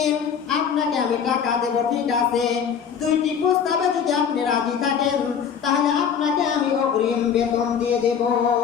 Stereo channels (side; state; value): right; quieter; 7.4 dB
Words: আপনাকে আমি টাকা দেব, ঠিক আছে, 2টি প্রস্তাবে যদি আপনি রাজি থাকেন তাহলে আপনাকে আমি অগ্রিম বেতন দিয়ে দেব।